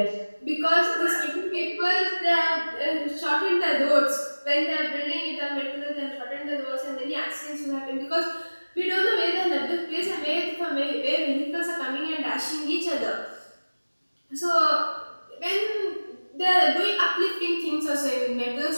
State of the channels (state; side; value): inverted; both; correlation -1.00